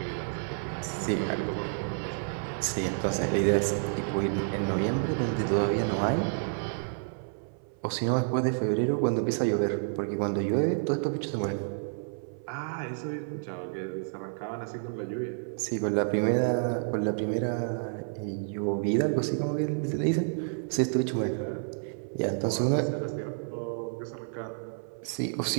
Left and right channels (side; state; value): left; silent; 58 dB below the other